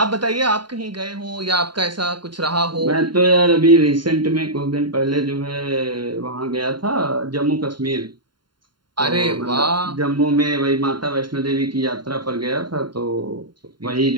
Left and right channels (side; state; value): left; late; 0.72 ms